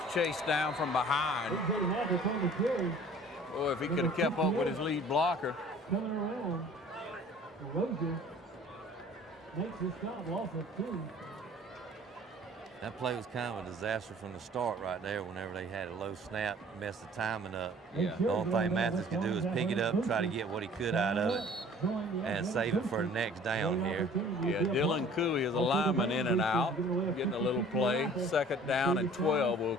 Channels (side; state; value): both; normal; correlation 0.50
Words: chased down from behind. Oh, if he could have kept up with his lead blocker. Coming around. Rogers makes his stop off of 2. That play was kind of a disaster from the start right there whenever they had a low snap, messed the timing up. Yeah. The only thing Mathis could do is pick it up, try to get what he could out of it, and save it for the next down here. Yeah, Dylan Cooley is a lineman in and out, getting a little play. Second down and 12, we'll